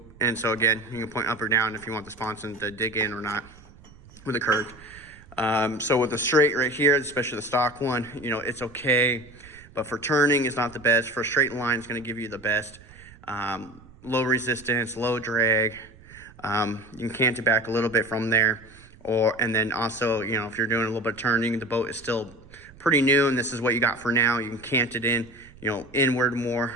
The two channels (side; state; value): right; noise; rumble, 22 dB below the sound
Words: and so again, you can point up or down if you want the sponson to dig in or not with a curve. So with the straight right here, especially the stock one, you know, it's okay, but for turning, it's not the best. For a straight line, it's going to give you the best. Low resistance, low drag. You can cant it back a little bit from there. And then also, you know, if you're doing a little bit of turning, the boat is still pretty new, and this is what you got for now. You can cant it in, you know, inward